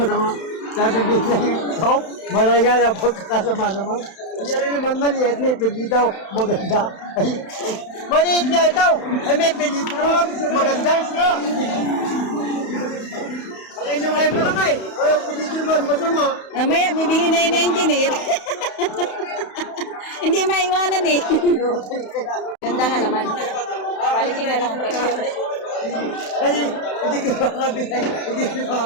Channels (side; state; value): right; late; 31 ms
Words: Sasabihin sa iyo, oh, malaki nga yan pagkakasama naman. Kaya rin naman maliit, may pili daw, maganda. Ay, maliit niya ito, ay may pili daw, maganda. Ay, nyo ngayon malaki. Ay, pili naman, masama. Mamaya, bibili na yun na engineer. Hindi maiwanan eh. Ganda nga naman. Quality nga lang ang presyo. Kasi hindi ko makakabinay, hindi ko